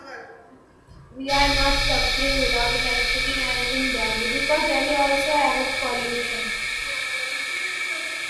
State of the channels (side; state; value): both; identical; correlation 1.00